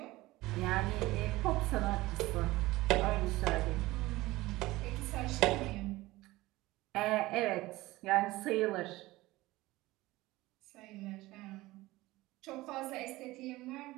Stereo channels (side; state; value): left; quieter; 19.0 dB